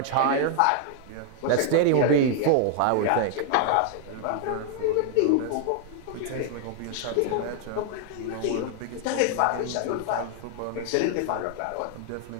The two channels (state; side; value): different; both; correlation 0.00